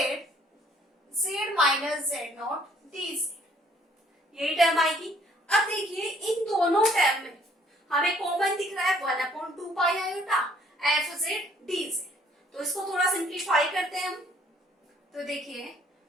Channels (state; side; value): normal; both; correlation 0.62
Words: Z minus Z naught D z, यही term आएगी। अब देखिए इन दोनों टर्म में हमें कॉमन दिख रहा है 1/2 iota f z d Z, तो इसको थोड़ा सिंप्लीफाई करते हैं हम। तो देखिए